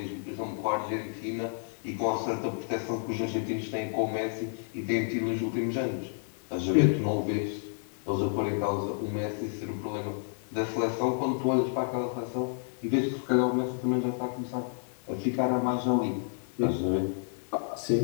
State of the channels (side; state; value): right; silent; digital silence